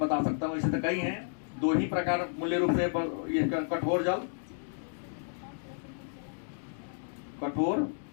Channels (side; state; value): right; silent; digital silence